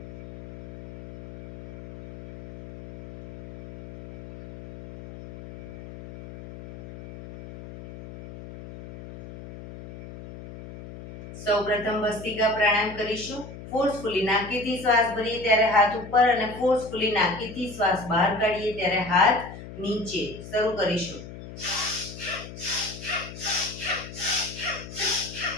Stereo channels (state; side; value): noise; left; hum, 14 dB below the sound